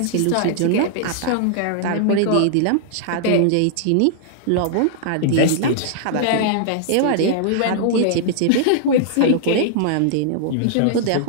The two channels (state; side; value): different; both; correlation -0.01